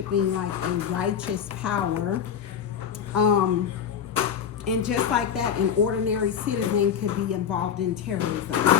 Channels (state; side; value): quieter; right; 8.1 dB